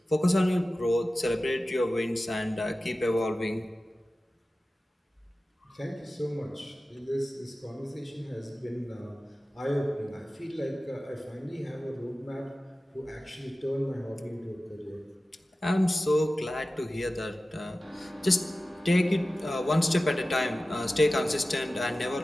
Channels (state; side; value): normal; both; correlation 0.95